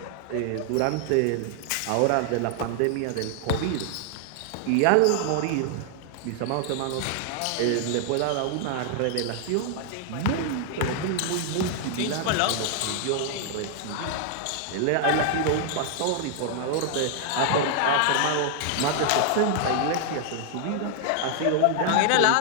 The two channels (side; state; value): both; different; correlation 0.00